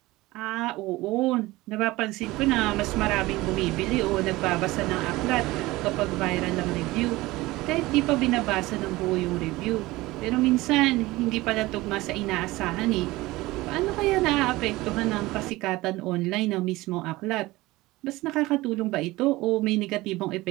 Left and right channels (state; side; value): quieter; left; 19.6 dB